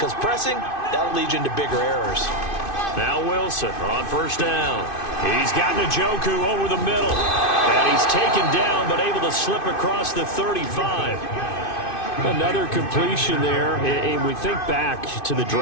pressing, that'll lead you into bigger errors. Now Wilson on first down. He's got Njoku over the middle. And he's taken down, but able to slip across the 35. Another completion there. And we think back to the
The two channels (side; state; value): right; late; 2.5 ms